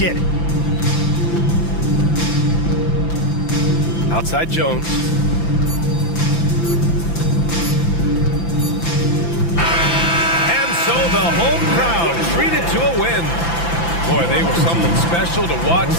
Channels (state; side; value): late; right; 5.9 ms